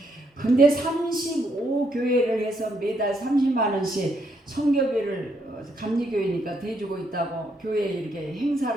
근데 35교회를 해서 매달 30만 원씩 선교비를 감리교회니까 대주고 있다고 교회에 이렇게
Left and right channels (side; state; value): both; normal; correlation 0.75